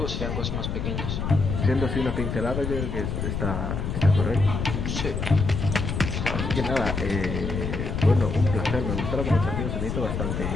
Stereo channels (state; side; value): noise; left; rumble, 3 dB below the sound